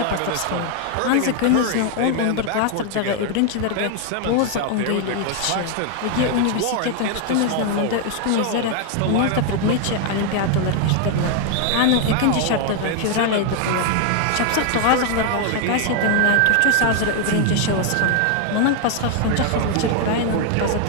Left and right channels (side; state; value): both; different; correlation 0.00